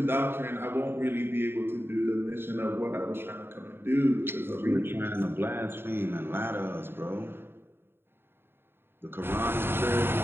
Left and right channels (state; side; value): late; left; 0.11 ms